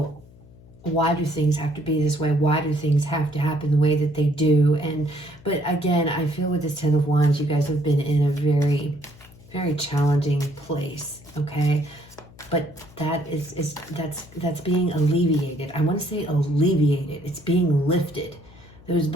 why do things have to be this way? Why do things have to happen the way that they do? But again, I feel with this Ten of Wands, you guys have been in a very, very challenging place, okay? But that's being alleviated. I want to say alleviated. It's being lifted. Those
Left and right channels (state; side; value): noise; left; hum, 23 dB below the sound